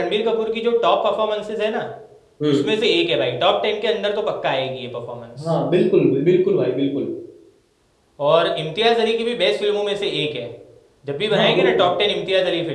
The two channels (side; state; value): both; identical; correlation 1.00